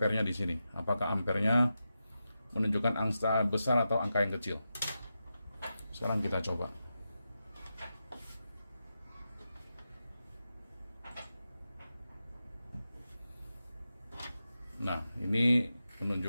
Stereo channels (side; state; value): both; inverted; correlation -0.90